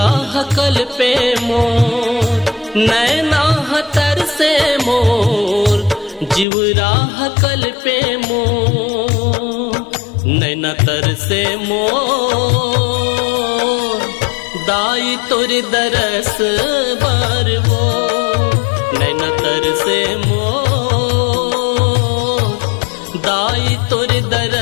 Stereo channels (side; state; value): right; drops out; at 6.5 s